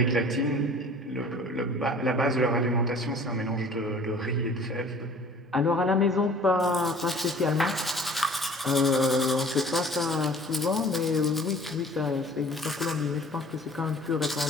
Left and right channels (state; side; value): normal; both; correlation 0.49